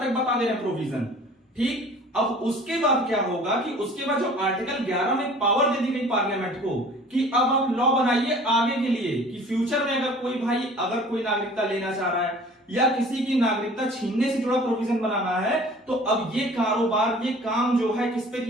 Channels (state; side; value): normal; both; correlation 0.47